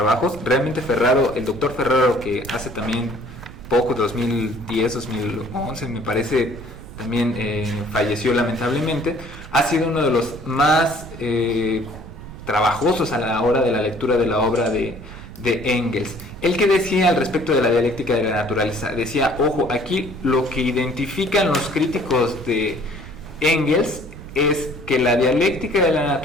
Realmente Ferraro, el doctor Ferraro, que hace también poco, 2010, 2011 me parece, también falleció lamentablemente, ha sido uno de los más trabajosos a la hora de la lectura de la obra de Engels. Él, que decía al respecto de la dialéctica de la naturaleza, decía, ojo, aquí lo que identifican los críticos de Engels es que la dialéctica de la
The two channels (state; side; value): noise; right; rumble, 15 dB below the sound